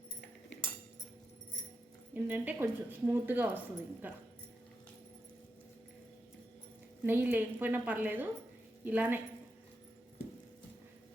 ఏంటంటే కొంచెం స్మూత్గా వస్తుంది. ఇంకా నెయ్యి లేకపోయినా పర్లేదు, ఇలానే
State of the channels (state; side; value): normal; both; correlation 0.86